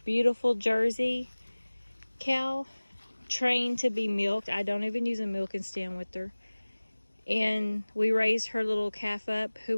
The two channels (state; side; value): inverted; both; correlation -1.00